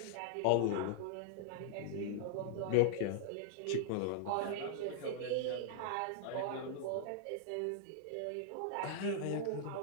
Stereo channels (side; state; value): both; different; correlation -0.01